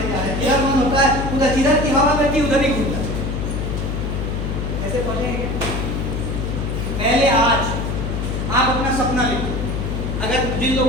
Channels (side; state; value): left; noise; hum, 2 dB below the sound